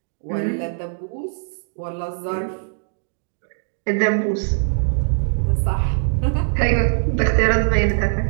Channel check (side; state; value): left; silent; digital silence